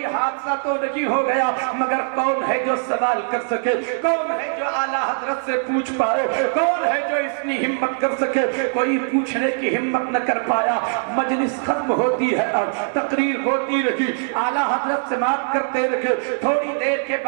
حادثہ تو نہیں ہو گیا, مگر کون ہے جو سوال کر سکے؟ کون ہے جو اعلیٰ حضرت سے پوچھ پائے؟ کون ہے جو اتنی ہمت کر سکے؟ کوئی پوچھنے کی ہمت نہ کر پایا. مجلس ختم ہوتی ہے, اب تقریر ہوتی رہی, اعلیٰ حضرت سماعت کرتے رہے. تھوڑی دیر کے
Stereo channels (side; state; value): left; silent; 65 dB below the other